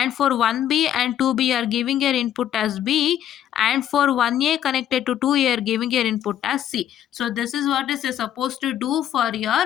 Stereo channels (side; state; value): right; quieter; 10.9 dB